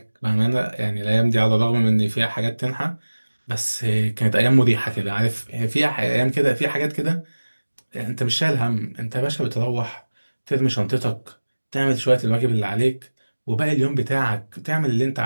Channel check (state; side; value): inverted; both; correlation -1.00